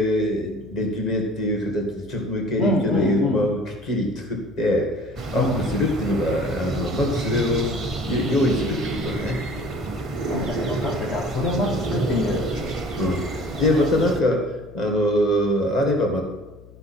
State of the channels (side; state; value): left; noise; hum, 21 dB below the sound